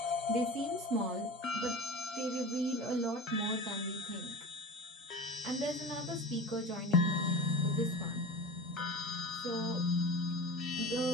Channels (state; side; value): normal; both; correlation 0.33